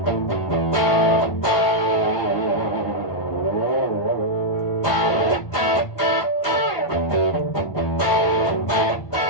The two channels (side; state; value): right; late; 1.5 ms